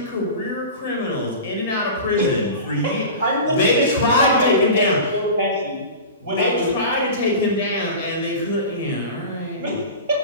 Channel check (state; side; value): inverted; both; correlation -0.32